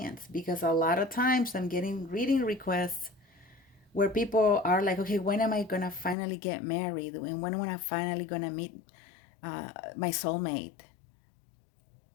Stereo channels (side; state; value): right; drops out; at 6.2 s